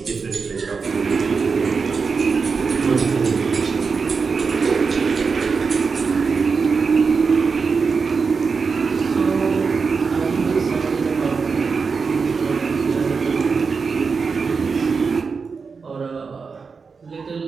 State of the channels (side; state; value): left; quieter; 5.1 dB